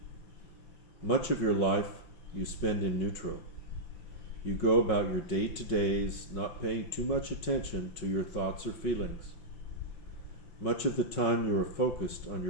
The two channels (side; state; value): right; late; 5.9 ms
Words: Much of your life you spend in neutral. You go about your day-to-days, not paying too much attention to your thoughts or feelings. Much of the time you are focused on